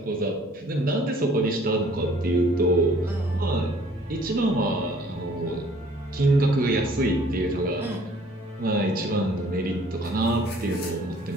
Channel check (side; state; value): both; normal; correlation 0.57